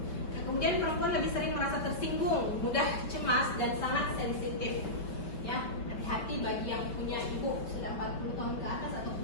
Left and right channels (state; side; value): late; right; 5.2 ms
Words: Nah, kemudian perempuan lebih sering merasa tersinggung, mudah cemas dan sangat sensitif. Ya, hati-hati bagi yang punya ibu sudah 40 tahun ke atas atau